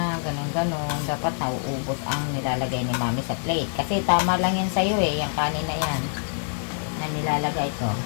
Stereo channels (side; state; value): right; silent; digital silence